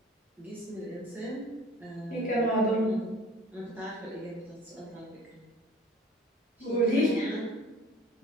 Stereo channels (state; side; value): normal; both; correlation 0.47